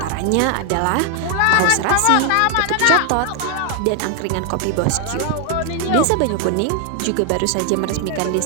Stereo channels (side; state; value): both; different; correlation 0.00